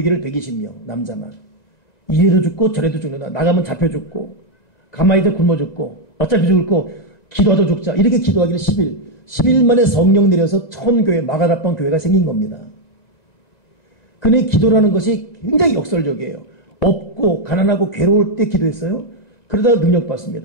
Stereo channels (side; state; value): right; late; 2.0 ms